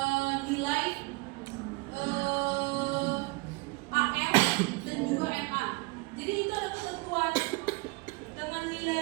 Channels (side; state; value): left; quieter; 26.5 dB